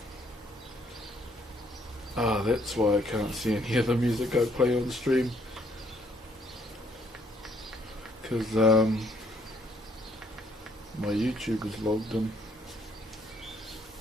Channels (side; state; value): both; normal; correlation 0.67